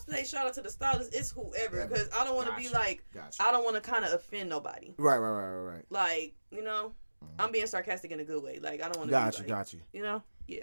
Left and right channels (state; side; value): inverted; both; correlation -1.00